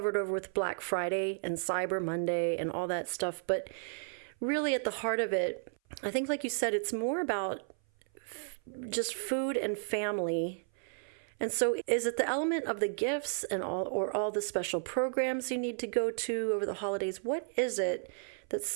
over with Black Friday and Cyber Monday and all that stuff, but really at the heart of it, I think like you said, it's more about just food and family. And so is it the element of the gifts and all the special programs you need to go to over the holidays? What is it that's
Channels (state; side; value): silent; left; 56 dB below the other